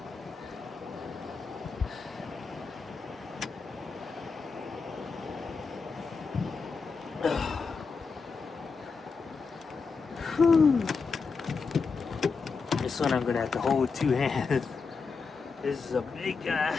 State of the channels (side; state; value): right; quieter; 4.9 dB